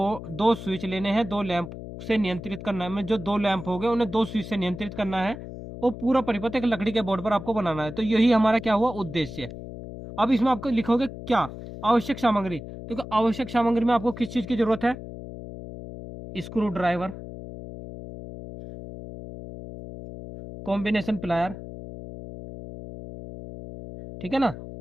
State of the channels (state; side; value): noise; left; hum, 11 dB below the sound